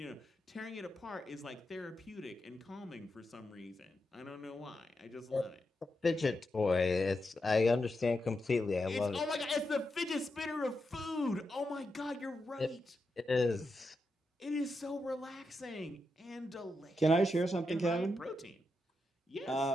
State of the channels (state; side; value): normal; both; correlation 0.86